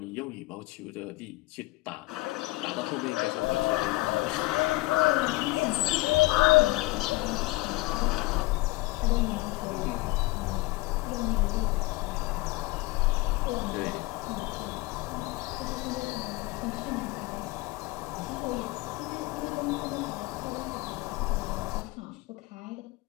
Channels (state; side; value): quieter; right; 21.3 dB